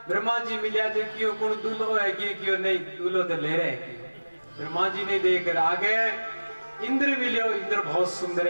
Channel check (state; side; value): inverted; both; correlation -1.00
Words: ब्रह्मा जी मिलिया जो क्यों कौन दूल्हो है क्यों नहीं दूल्हो तो ले रहे ब्रह्मा जी ने देख कर आगे इंद्र मिलियो, इंद्र बहुत सुंदर